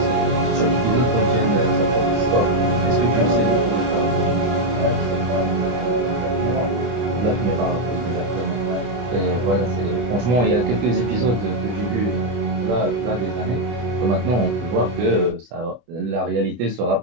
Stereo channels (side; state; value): left; late; 24 ms